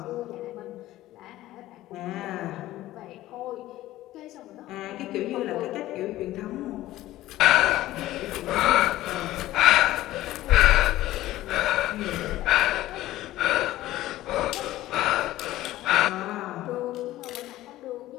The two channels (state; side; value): quieter; right; 15.5 dB